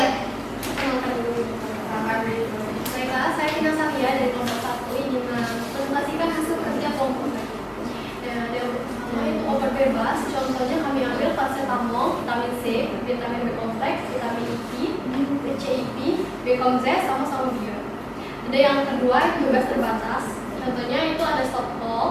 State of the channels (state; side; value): identical; both; correlation 1.00